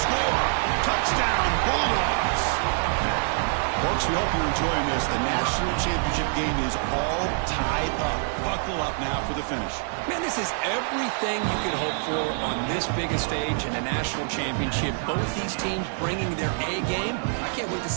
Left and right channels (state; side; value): silent; left; 59 dB below the other